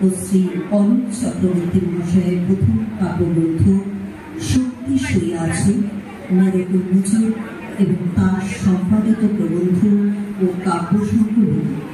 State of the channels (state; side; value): identical; both; correlation 1.00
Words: ও শ্রী অলোক চক্রবর্তী মহাশয়ের প্রথম কাব্যগ্রন্থ শক্তি শুয়ে আছে মেরক উন্মোচন এবং তার সম্পাদিত প্রবন্ধ ও কাব্য সংকলন